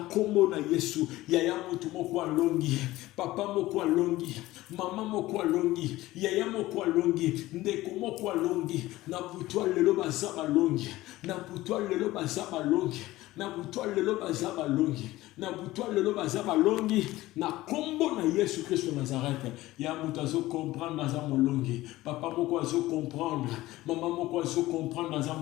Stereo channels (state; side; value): quieter; right; 17.4 dB